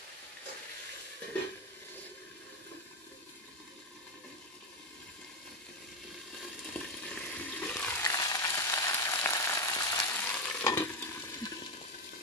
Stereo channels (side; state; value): both; normal; correlation 0.10